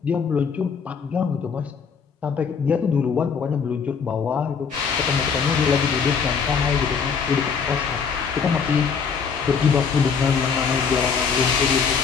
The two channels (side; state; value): right; quieter; 6.1 dB